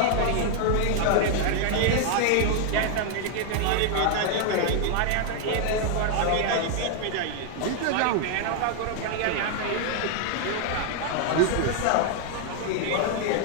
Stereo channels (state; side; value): different; both; correlation 0.00